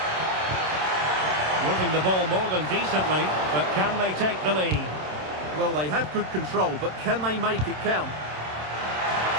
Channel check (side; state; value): left; late; 27 ms